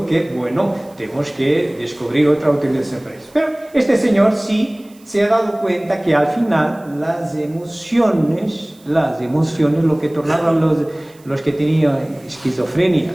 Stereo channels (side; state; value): right; noise; hiss, 28 dB below the sound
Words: que, bueno, tenemos que descubrir otra utilización para eso. Pero este señor sí se ha dado cuenta que al final las emociones, lo que tornaban los que tenían esquizofrenia,